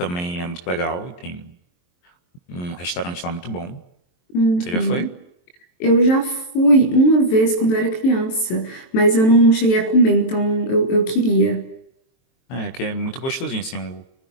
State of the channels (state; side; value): late; right; 23 ms